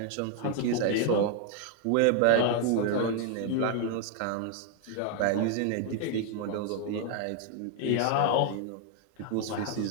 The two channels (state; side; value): different; both; correlation 0.00